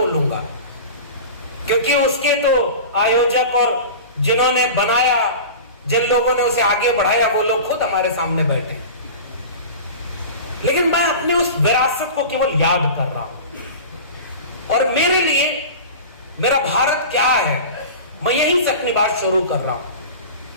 क्योंकि उसके तो आयोजक और जिन्होंने बनाया, जिन लोगों ने उसे आगे बढ़ाया, वो लोग खुद हमारे सामने बैठे हैं। लेकिन मैं अपनी उस विरासत को केवल याद कर रहा हूं। और मेरे लिए मेरा भारत क्या है, मैं यहीं से अपनी बात शुरू कर रहा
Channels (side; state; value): both; inverted; correlation -0.34